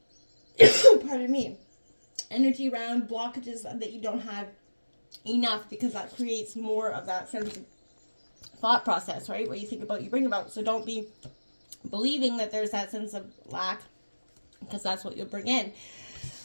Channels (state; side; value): inverted; both; correlation -1.00